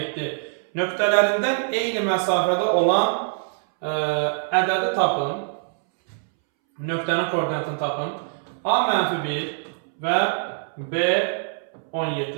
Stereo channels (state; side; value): silent; left; 63 dB below the other